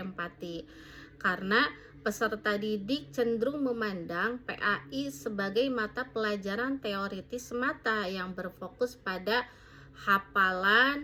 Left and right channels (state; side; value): identical; both; correlation 1.00